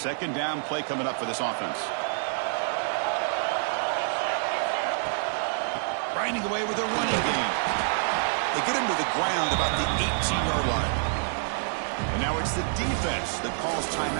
down play coming up for this offense. Grinding away with a running game. They get him to the ground about the 18-yard line. And now it's the defense that calls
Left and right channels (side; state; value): left; silent; digital silence